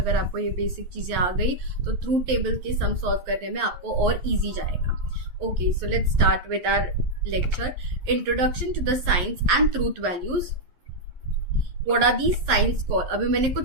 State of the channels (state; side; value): late; left; 11 ms